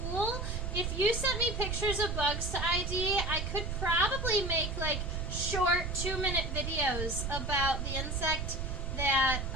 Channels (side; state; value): right; noise; rumble, 3 dB below the sound